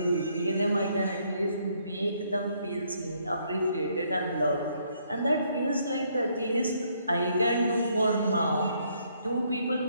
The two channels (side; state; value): both; inverted; correlation -0.70